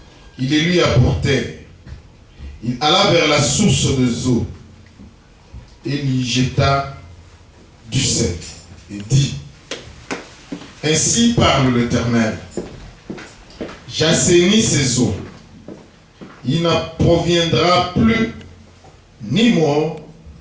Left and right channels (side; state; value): both; identical; correlation 1.00